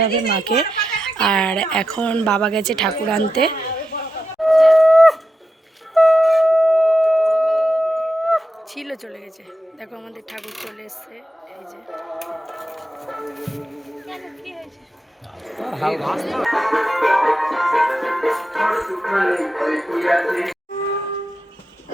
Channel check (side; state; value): both; normal; correlation 0.87